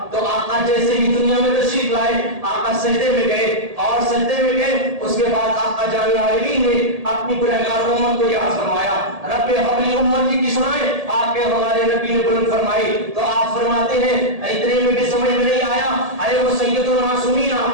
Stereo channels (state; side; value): late; left; 1.8 ms